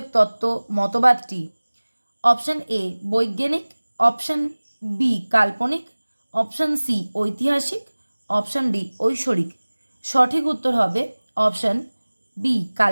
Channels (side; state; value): both; inverted; correlation -1.00